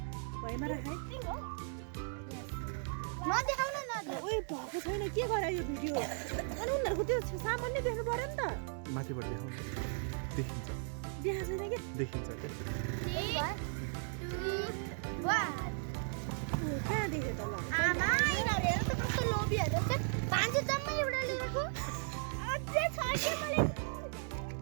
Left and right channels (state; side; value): silent; left; 53 dB below the other